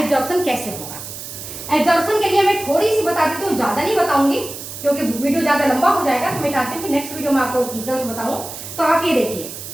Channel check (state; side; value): noise; right; hiss, 10 dB below the sound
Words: कैसे होगा? एब्जॉर्प्शन के लिए मैं थोड़ी सी बता देती हूँ, ज़्यादा नहीं बताऊंगी क्योंकि वीडियो ज़्यादा लंबा हो जाएगा। तो मैं चाहती हूँ कि नेक्स्ट वीडियो में आपको डिटेल्स बताऊँ। तो आप ये देखिए,